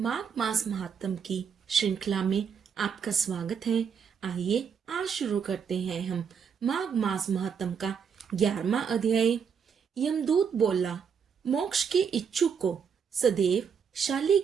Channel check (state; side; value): quieter; left; 6.8 dB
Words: मास महात्म की श्रृंखला में आपका स्वागत है। आइए आज शुरू करते हैं हम माघ मास महात्म का 11वां अध्याय। यमदूत बोला, मोक्ष के इच्छुक को सदैव